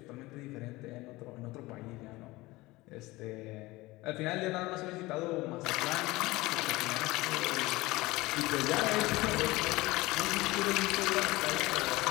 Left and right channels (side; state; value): right; quieter; 20.4 dB